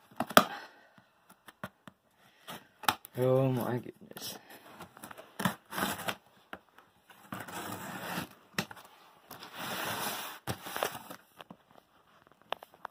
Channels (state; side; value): identical; both; correlation 1.00